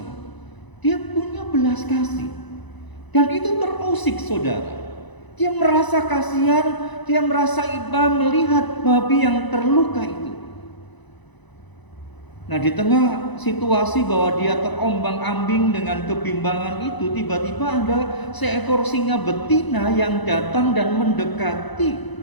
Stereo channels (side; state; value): right; late; 1.0 ms